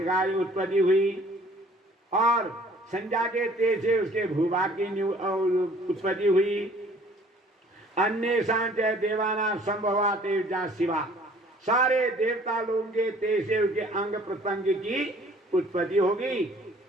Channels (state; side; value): normal; both; correlation 0.55